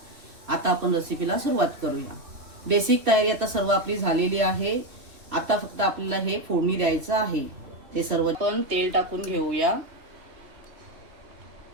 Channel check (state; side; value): late; left; 3.1 ms